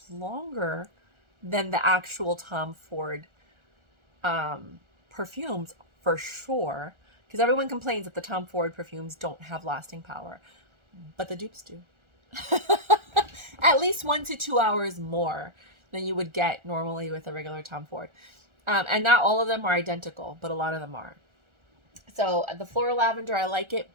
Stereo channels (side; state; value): left; late; 1.4 ms